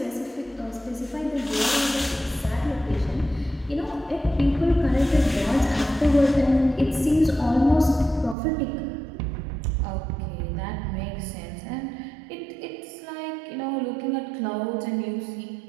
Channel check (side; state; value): left; drops out; at 8.3 s